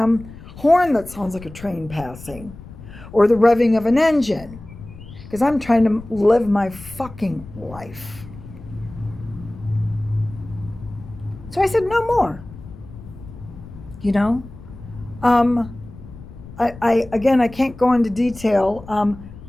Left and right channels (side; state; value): left; noise; rumble, 16 dB below the sound